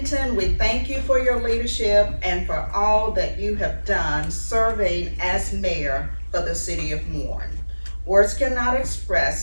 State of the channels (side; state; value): both; inverted; correlation -1.00